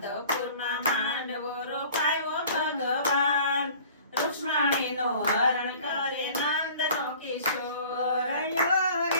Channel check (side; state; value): both; inverted; correlation -0.47